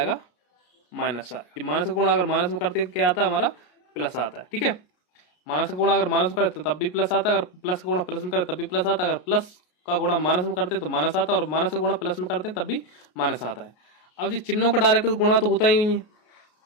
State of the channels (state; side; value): late; right; 33 ms